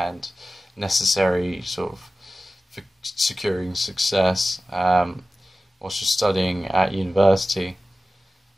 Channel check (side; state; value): both; normal; correlation 0.95